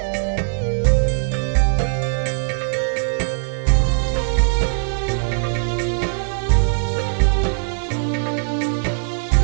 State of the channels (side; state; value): left; silent; digital silence